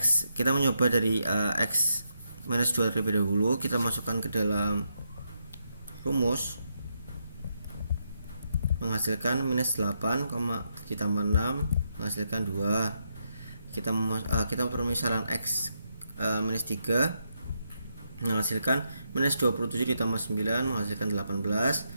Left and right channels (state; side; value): inverted; both; correlation -0.81